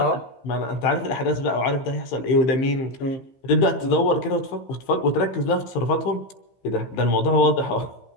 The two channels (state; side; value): late; right; 15 ms